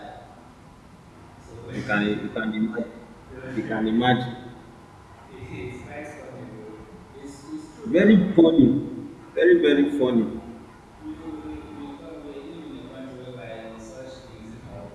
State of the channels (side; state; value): both; identical; correlation 1.00